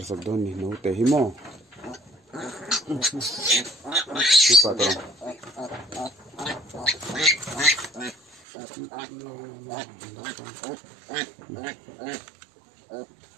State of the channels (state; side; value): drops out; left; at 8.3 s